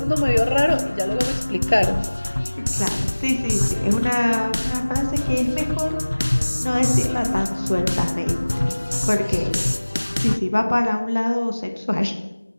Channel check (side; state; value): both; inverted; correlation -1.00